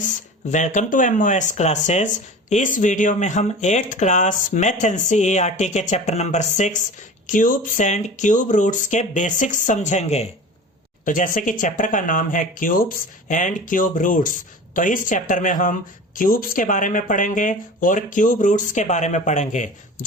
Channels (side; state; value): both; normal; correlation 0.36